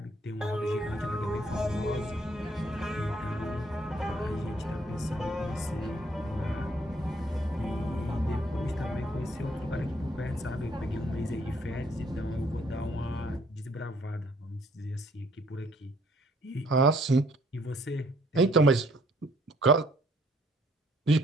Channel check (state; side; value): normal; both; correlation 0.64